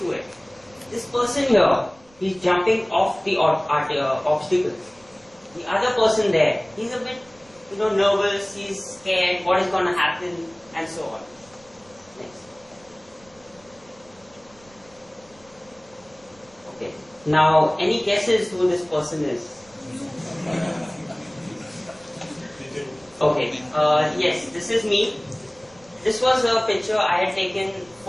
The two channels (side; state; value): right; noise; rumble, 28 dB below the sound